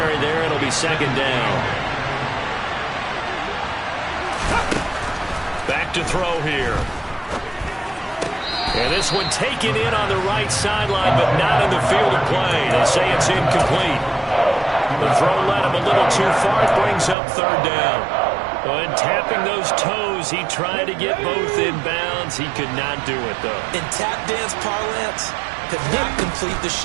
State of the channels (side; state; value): left; drops out; at 17.2 s